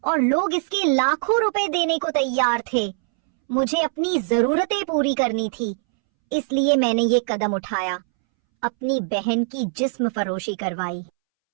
और लोग इसके लाखों रुपए देने को तैयार थे। मुझे अपनी जरूरतें पूरी करनी थी, इसलिए मैंने ये कदम उठाया, अपनी बहन की जिस्म फरोशी करवाई।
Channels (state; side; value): silent; left; 64 dB below the other